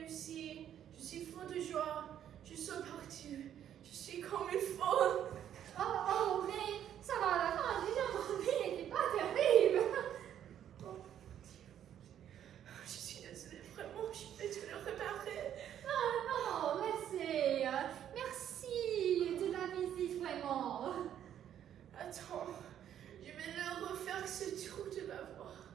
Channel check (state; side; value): quieter; left; 10.2 dB